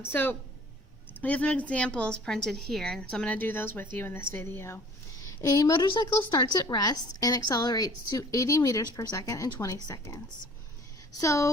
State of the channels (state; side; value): normal; both; correlation 0.50